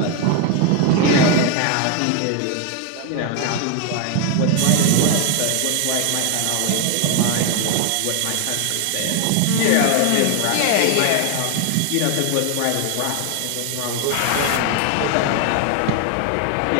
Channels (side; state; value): both; different; correlation 0.01